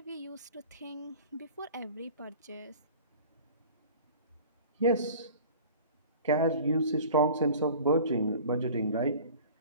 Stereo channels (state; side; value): inverted; both; correlation -0.43